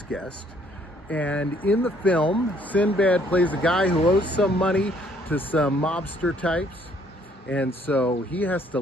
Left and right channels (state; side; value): normal; both; correlation 0.64